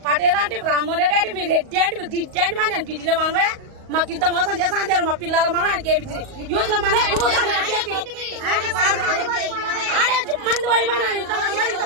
పటేల్ అంటే రామ్మోహన్ రెడ్డి అంటే మీరు రెడ్డి అంటే మీరు దిడ్డి అంటే మరి నేను దిడ్డిలో మనమే మాకు ఇంత మోసం చేస్తా అంటారు. మా పిల్లల మనం ఆయనకి ఏమి యూత్ లో మన ఆడే మంది పోయినా ఇంత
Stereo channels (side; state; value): left; late; 38 ms